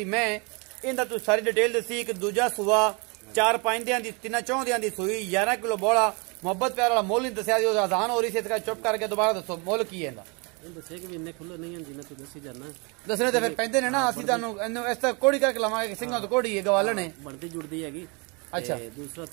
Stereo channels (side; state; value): left; quieter; 31.3 dB